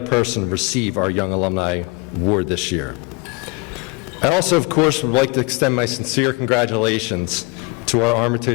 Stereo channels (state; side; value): quieter; right; 26.3 dB